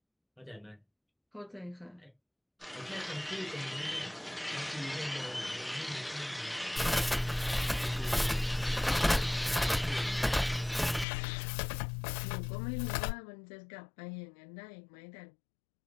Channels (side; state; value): right; drops out; at 11.1 s